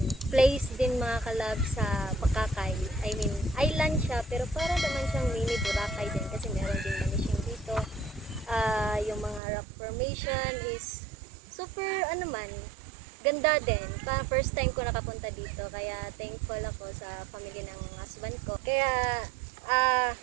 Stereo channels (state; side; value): drops out; left; at 9.4 s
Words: place din mga kalabs sa Bakakay. I mean, island siya pero para naman siyang mini Boracay din kasi meron din manishing dito. Yung mga rock formation is super ganda din. First time ko nakapunta dito kaya thankful ako sa family ng husband ko. Kaya